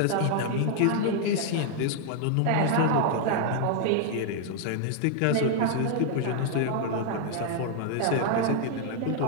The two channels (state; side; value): different; both; correlation 0.00